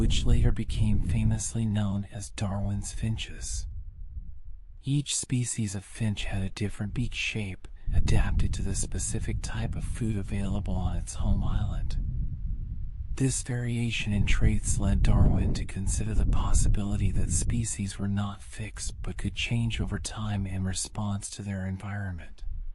later became famously known as Darwin's finches. Each species of finch had a different beak shape, adapted to the specific type of food available on its home island. This variation in traits led Darwin to consider the possibility that species were not fixed but could change over time in response to their environment.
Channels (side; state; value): both; identical; correlation 1.00